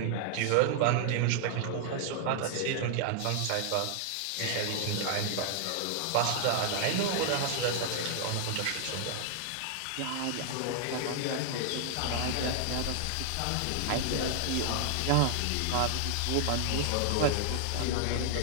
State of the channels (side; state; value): both; different; correlation 0.00